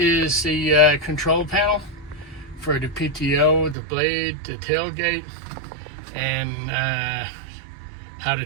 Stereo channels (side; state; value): left; drops out; at 3.8 s